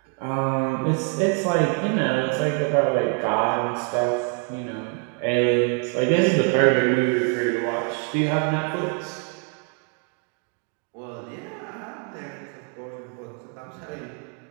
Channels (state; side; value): quieter; left; 35.4 dB